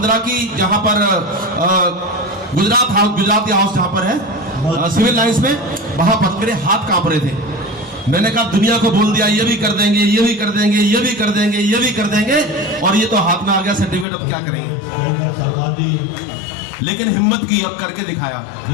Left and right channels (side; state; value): right; drops out; at 14.1 s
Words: की, जहां पर गुजराती हाउस जहां पर है सिविल लाइंस में, वहां पर मेरे हाथ कांप रहे थे। मैंने कहा दुनिया को बोल दिया ये भी कर देंगे, ये भी कर देंगे, ये भी कर देंगे, ये भी कर देंगे, और ये तो हाथ में आ गया सर्टिफिकेट, अब क्या करेंगे? लेकिन हिम्मत की और करके दिखाया।